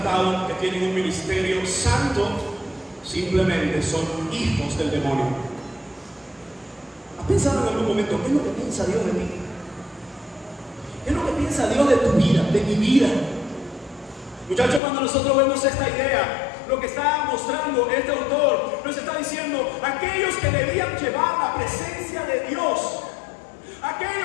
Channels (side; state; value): right; drops out; at 14.8 s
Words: que tienen un ministerio santo, simplemente son hijos del demonio. ¿Has pensado en algún momento qué es lo que piensa Dios de mí? ¿Qué es lo que piensa Dios de tu vida, de mi vida? Muchachos, cuando nosotros vemos esta idea, lo que está mostrando este autor, nos está diciendo, aquellos que debían llevar la presencia de Dios,